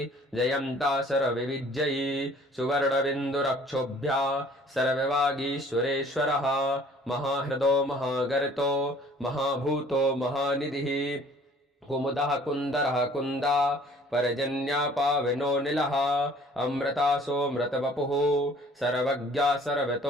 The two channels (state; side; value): normal; both; correlation 0.54